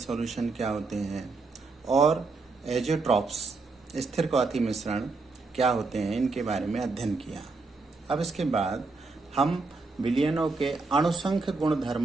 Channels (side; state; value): left; quieter; 3.9 dB